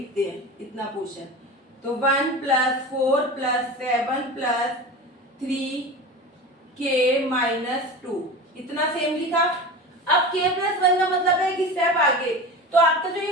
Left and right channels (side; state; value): both; normal; correlation 0.30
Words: हैं, इतना पोर्शन। तो 1 + 4 + 7 + 3k - 2, इतना सेम लिखा। अब k + 1 का मतलब है कि स्टेप आगे। तो आपका जो ये